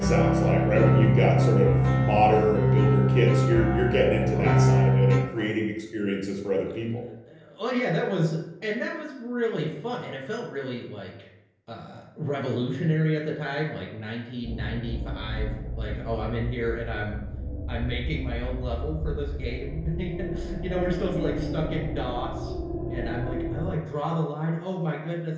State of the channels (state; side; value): identical; both; correlation 1.00